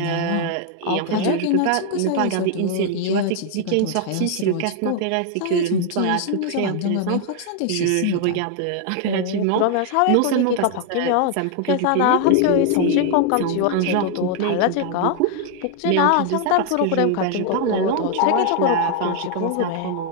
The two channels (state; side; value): different; both; correlation 0.00